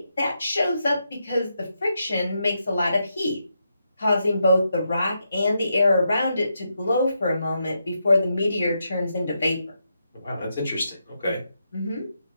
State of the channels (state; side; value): inverted; both; correlation -0.83